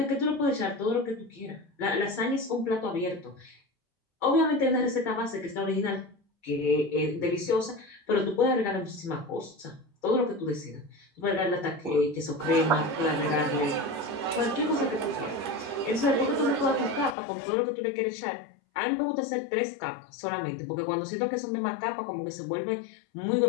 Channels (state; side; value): drops out; right; at 17.2 s